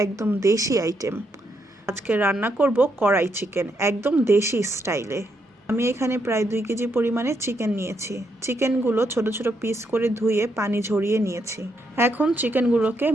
একদম দেশি আইটেম। আজকে রান্না করব কড়াই চিকেন, একদম দেশি স্টাইলে। আমি এখানে প্রায় 2 কেজি পরিমাণে চিকেন নিয়েছি। চিকেনগুলো ছোট ছোট পিস করে ধুয়ে পানি ঝরিয়ে নিয়েছি। এখন চিকেনগুলোকে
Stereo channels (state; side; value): normal; both; correlation 0.78